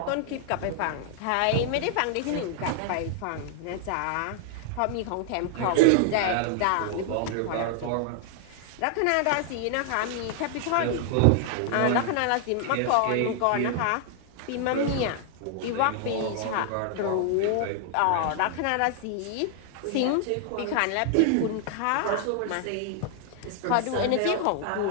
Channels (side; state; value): both; different; correlation 0.00